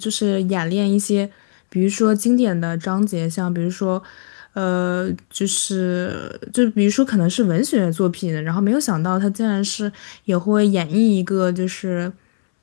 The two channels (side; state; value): right; silent; 64 dB below the other